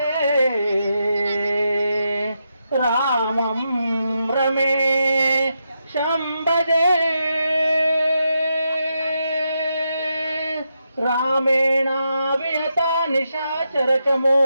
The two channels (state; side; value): inverted; both; correlation -0.84